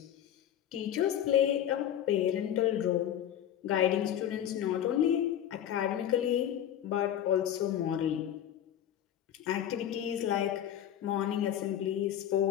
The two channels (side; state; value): right; quieter; 10.6 dB